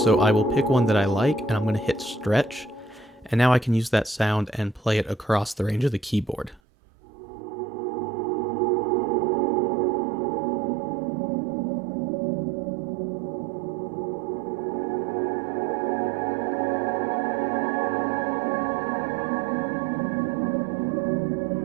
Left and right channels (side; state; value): left; drops out; at 6.6 s